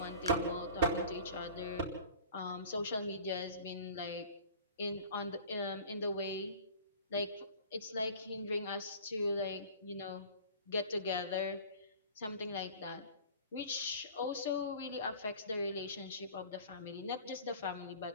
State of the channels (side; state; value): both; inverted; correlation -0.43